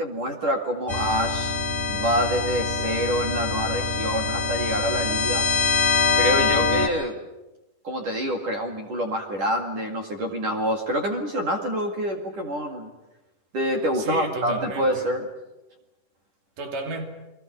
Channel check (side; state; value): left; late; 10 ms